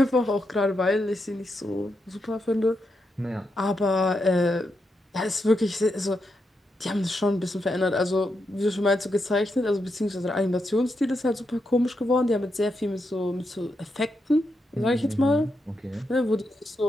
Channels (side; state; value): both; normal; correlation 0.84